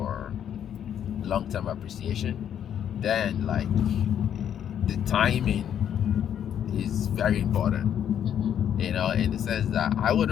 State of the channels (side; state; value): right; quieter; 9.4 dB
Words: long-term appreciation, then like the timing is very important. You know, in the sense that I